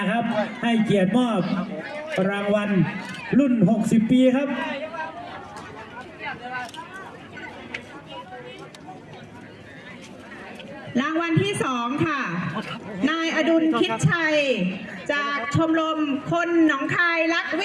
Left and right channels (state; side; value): identical; both; correlation 1.00